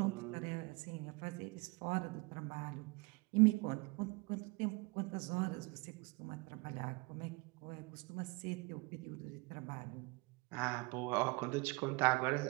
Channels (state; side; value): quieter; left; 26.7 dB